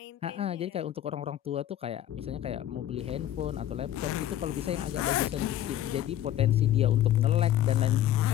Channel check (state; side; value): quieter; right; 12.1 dB